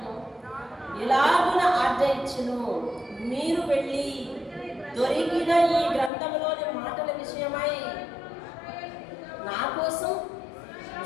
ఇలాగున ఆజ్ఞ ఇచ్చెను, మీరు వెళ్ళి దొరికిన ఈ గ్రంథంలోని మాటల విషయమై నా కోసం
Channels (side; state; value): right; drops out; at 6.1 s